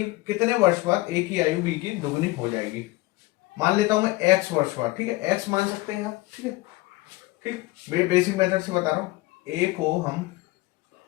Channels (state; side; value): quieter; right; 20.9 dB